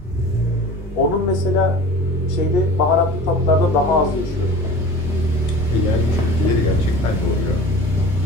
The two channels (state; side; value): normal; both; correlation 0.39